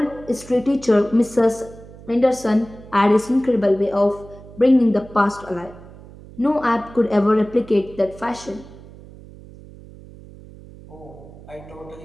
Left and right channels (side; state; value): right; noise; hum, 19 dB below the sound